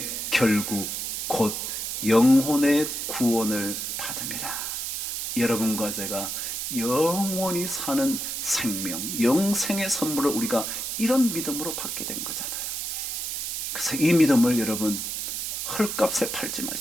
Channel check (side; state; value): right; noise; hiss, 3 dB below the sound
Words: 결국 곧 영혼의 구원을 받음이라. 여러분과 제가 영원히 사는 생명, 영생의 선물을 우리가 이런 믿음으로 받게 된 거잖아요. 그래서 이 믿음을 여러분 헐값에 팔지